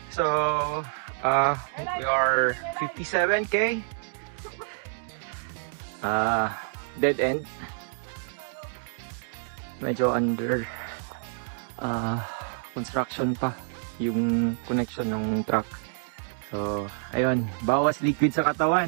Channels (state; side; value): silent; left; digital silence